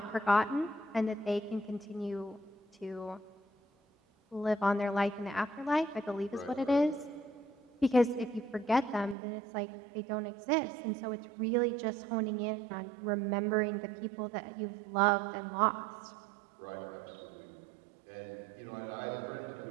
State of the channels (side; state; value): left; drops out; at 9.2 s